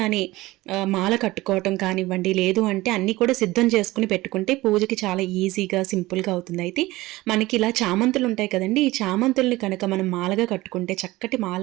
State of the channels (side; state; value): left; quieter; 19.1 dB